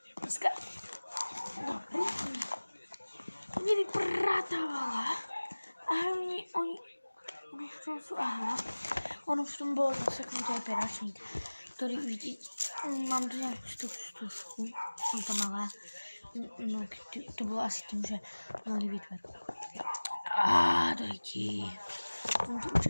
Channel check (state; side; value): inverted; both; correlation -1.00